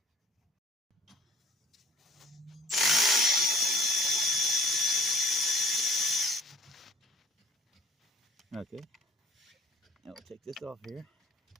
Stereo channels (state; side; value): normal; both; correlation 0.50